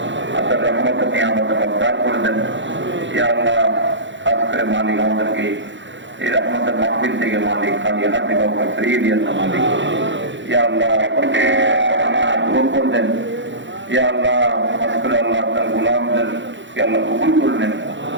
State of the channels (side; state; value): left; late; 0.54 ms